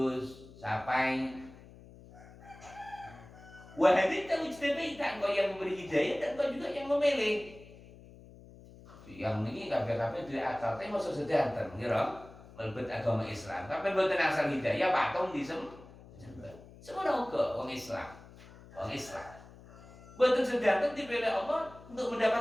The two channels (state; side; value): noise; left; hum, 20 dB below the sound